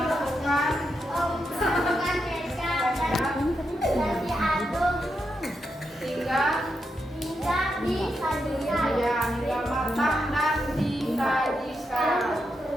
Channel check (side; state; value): both; normal; correlation 0.84